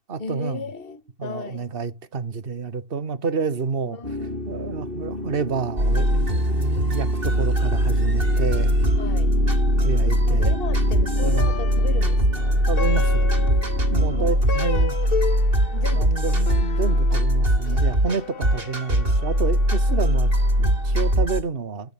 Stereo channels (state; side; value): late; left; 2.7 ms